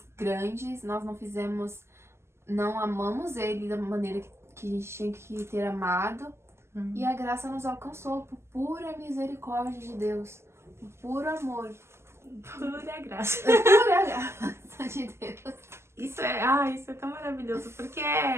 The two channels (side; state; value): left; late; 0.13 ms